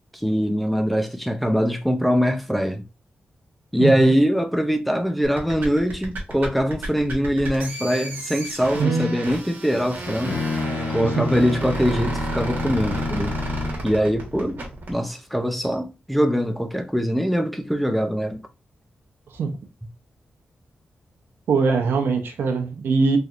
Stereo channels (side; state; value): both; normal; correlation 0.92